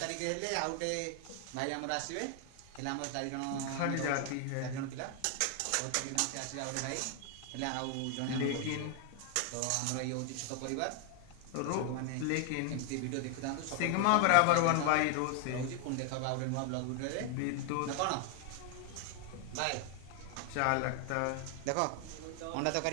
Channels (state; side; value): different; both; correlation 0.00